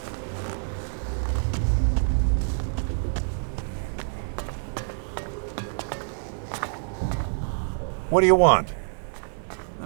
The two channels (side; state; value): left; silent; digital silence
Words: What do you want?